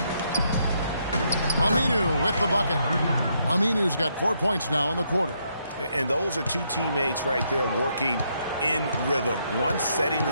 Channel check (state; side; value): inverted; both; correlation -0.75